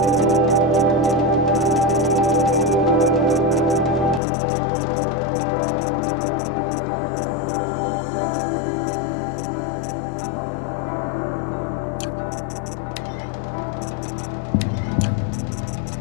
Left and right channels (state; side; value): drops out; right; at 4.2 s